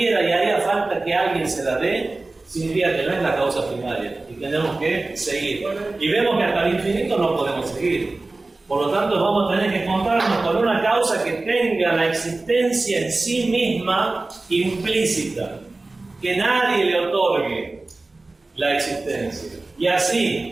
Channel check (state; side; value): quieter; left; 3.2 dB